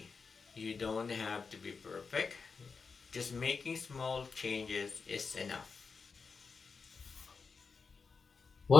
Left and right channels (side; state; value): right; quieter; 5.0 dB